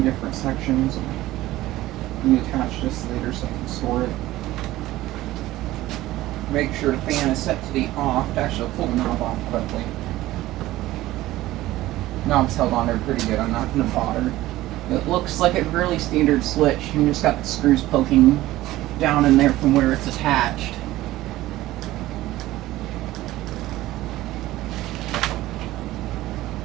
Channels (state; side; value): quieter; left; 16.3 dB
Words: different sections. Let me attach this later so I can store it. Make sure the fan is set to the off. Actually, I'll pull the knob off quickly. Knob's held on there pretty good. I'm not going to bother. It looks like a really standard switch. You just got the screws poking down in there from where it's attached.